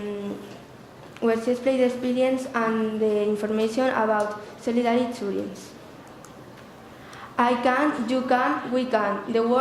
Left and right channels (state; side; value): identical; both; correlation 1.00